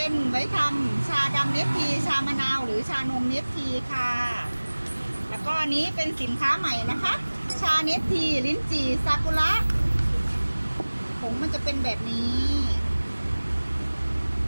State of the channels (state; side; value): inverted; both; correlation -1.00